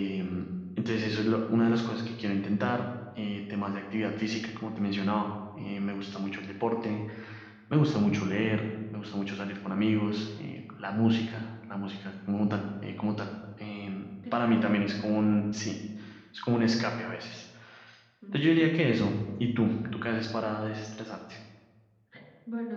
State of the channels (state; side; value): identical; both; correlation 1.00